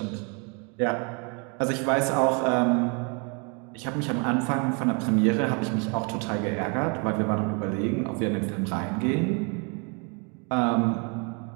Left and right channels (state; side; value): quieter; left; 34.9 dB